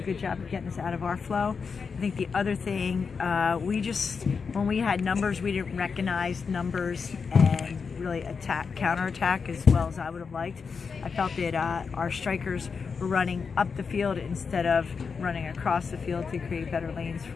good job of getting us out of our flow. I think the other thing, when we had numbers, we didn't recognize numbers and really counterattack as well as I would have liked. I felt that our strikers were running up the field instead of running across the field to create better lanes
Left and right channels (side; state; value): right; quieter; 5.5 dB